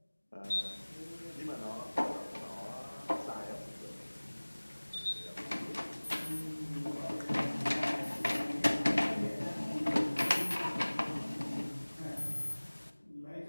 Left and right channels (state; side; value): inverted; both; correlation -1.00